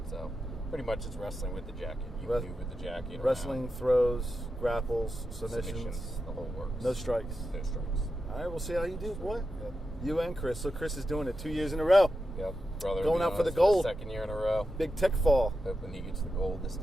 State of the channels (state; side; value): normal; both; correlation 0.89